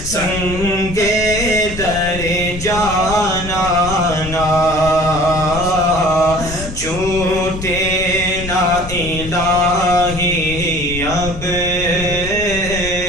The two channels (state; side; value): noise; left; rumble, 9 dB below the sound